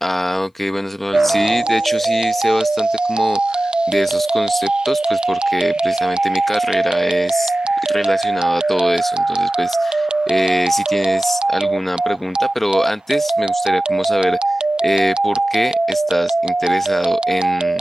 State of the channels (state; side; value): normal; both; correlation 0.96